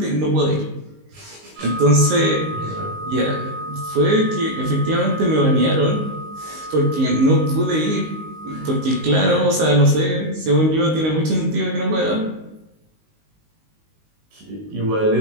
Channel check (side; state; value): left; late; 19 ms